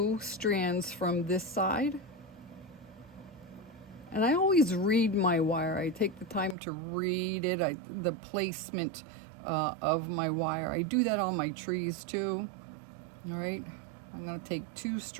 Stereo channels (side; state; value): left; drops out; at 6.6 s